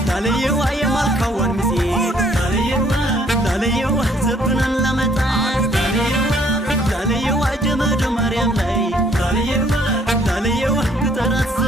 ላለየዋ የማልካዋን ሚዜ ላለየዋ ዘብናን ላመጣ ላለየዋ ጀመደ ማርያም ላይ ላለየዋ ግጠራት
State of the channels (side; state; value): both; normal; correlation 0.63